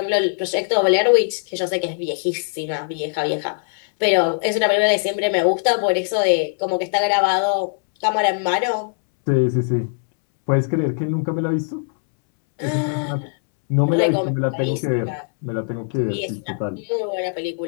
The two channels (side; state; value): right; silent; 65 dB below the other